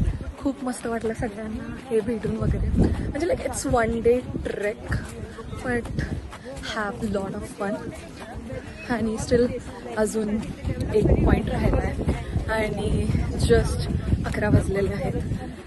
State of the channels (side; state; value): both; identical; correlation 1.00